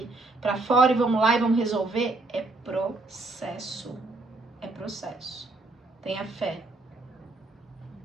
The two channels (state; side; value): quieter; left; 3.2 dB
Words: Pra fora e vamos lá e vamos resolver. É processo. É processo. Tenha fé.